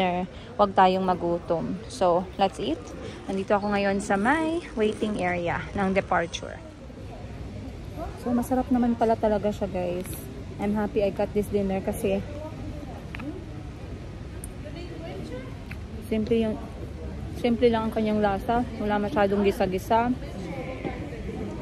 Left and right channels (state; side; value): identical; both; correlation 1.00